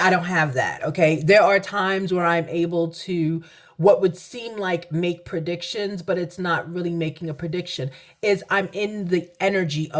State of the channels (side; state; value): both; identical; correlation 1.00